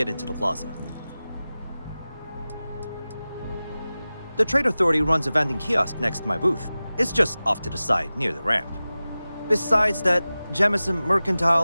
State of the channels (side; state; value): both; inverted; correlation -0.96